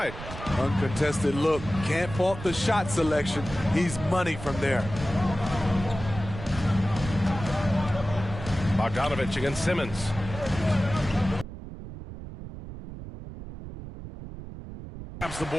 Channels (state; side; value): noise; right; rumble, 11 dB below the sound